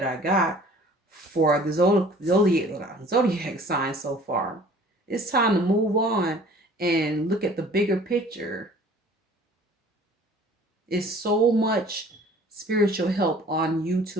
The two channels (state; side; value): normal; both; correlation 0.50